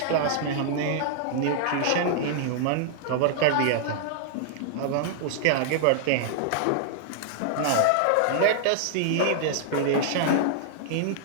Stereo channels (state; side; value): different; both; correlation -0.01